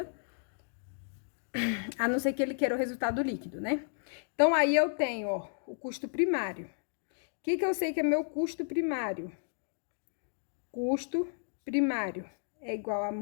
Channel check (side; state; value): right; silent; digital silence